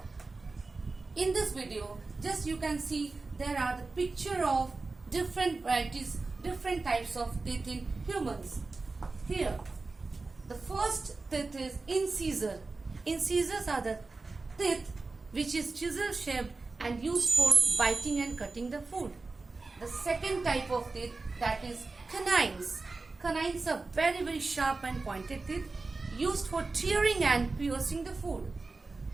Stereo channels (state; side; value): quieter; left; 3.7 dB